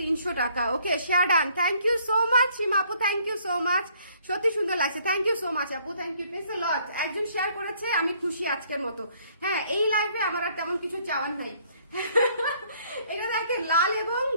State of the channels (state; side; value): inverted; both; correlation -0.63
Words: টাকা। Okay share done, thank you so much Seema আপু, থ্যাংক ইউ সো মাচ, সত্যি সুন্দর লাগছে, থ্যাংক ইউ সো মাচ আপু, thank you please a lot. একজন শেয়ার করেছে, আমি খুশি আজকের মতো। হ্যাঁ এই লাইভে আমার আর তেমন কিছু চাওয়ার নাই। এটা দেখেন লাল এবং